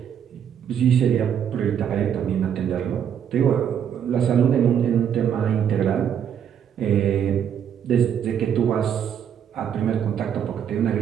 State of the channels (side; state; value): left; quieter; 8.7 dB